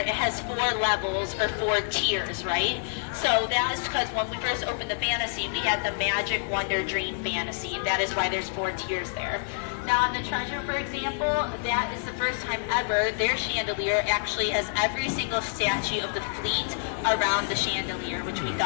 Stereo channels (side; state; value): right; silent; digital silence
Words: has 4 levels or 4 tiers, right? So that is because when we first opened the Fantasy, we had the Magic Wonder Dream Fantasy. That is why there's 4 tiers there. Now on the Treasure, for example, that is the first time ever their chandelier actually has every single statue of the fleet around the chandelier, which we